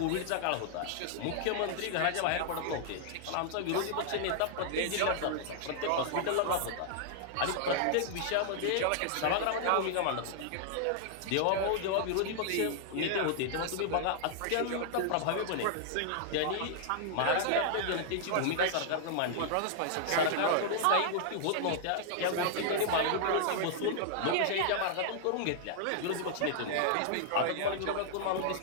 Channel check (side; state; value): both; different; correlation -0.01